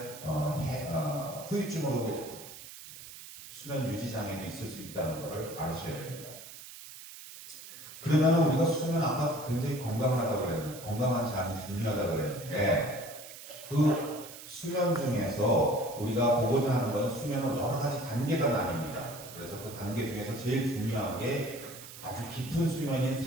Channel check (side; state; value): right; noise; hiss, 14 dB below the sound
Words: 후유증으로 수면 유지 장애도 있을 수 있다는 것을 아셔야 됩니다. 그러면 우리가 수면 아까 굉장히 건강하다고 그랬는데 건강한 잠이 중요하다고 그랬는데 그 수면 중에서 우리가 보고자 하는 것은 수면은 여러 가지 단계가 나뉩니다. 그래서 그 단계 중에서 제일 중요한 게 아주 깊은 수면인